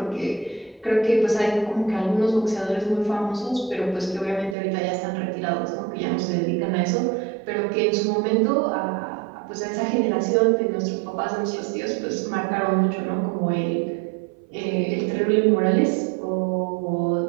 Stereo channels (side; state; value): left; drops out; at 4.5 s